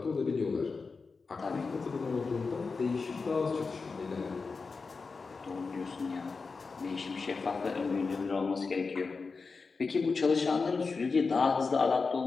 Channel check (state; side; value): quieter; right; 4.5 dB